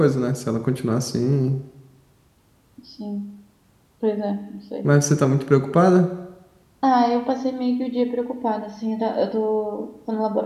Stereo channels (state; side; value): identical; both; correlation 1.00